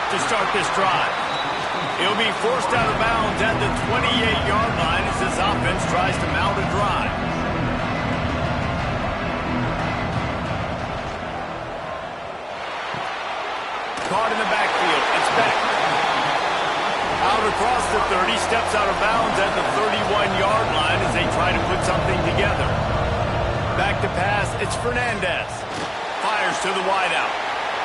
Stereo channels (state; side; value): identical; both; correlation 1.00